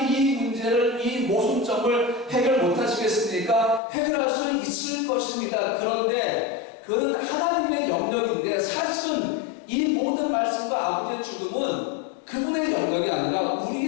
이 문제를, 이 모순점을 해결 못하시겠습니까? 해결할 수 있을 것입니다. 그런데 그건 하나님의 영역인데 사실은 이 모든 말씀과 아버지의 죽음은 그분의 그분의 영역이 아니라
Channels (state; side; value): drops out; right; at 3.8 s